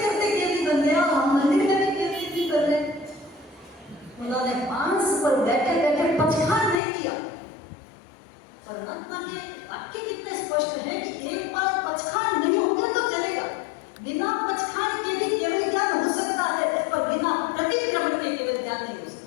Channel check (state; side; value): drops out; right; at 6.8 s